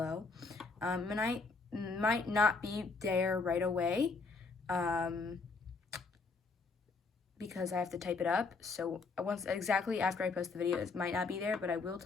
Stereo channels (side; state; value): right; quieter; 4.2 dB